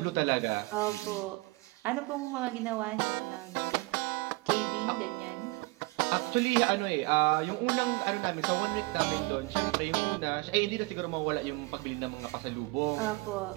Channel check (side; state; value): left; quieter; 25.3 dB